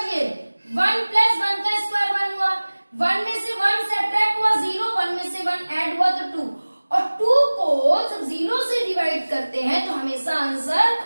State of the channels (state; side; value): inverted; both; correlation -1.00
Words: 1 + 1 का स्क्वायर 1 हुआ, 1 में से 1 सब्ट्रैक्ट हुआ 0, 1 में से 1 ऐड हुआ तो 2, और 2 को जब 0 से डिवाइड करते हैं तो हमेशा आंसर